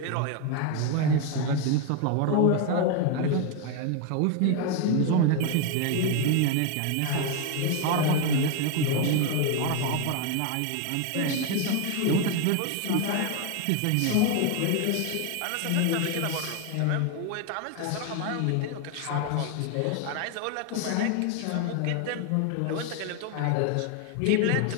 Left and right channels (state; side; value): different; both; correlation 0.01